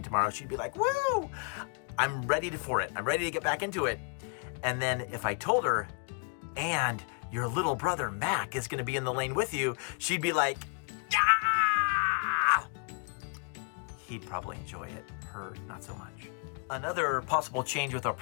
tomorrow, she'd be like, woo, I'm ready for it. I'm ready to get back into it. And then if I told her, and your little brother Mac is going to be in the lane with you, she'd be like, yeah! He'd probably enjoy it. Her, not so much. Another possible change with our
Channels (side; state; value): right; quieter; 37.7 dB